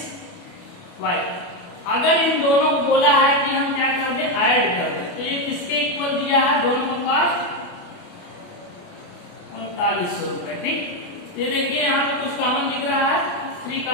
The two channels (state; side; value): late; right; 28 ms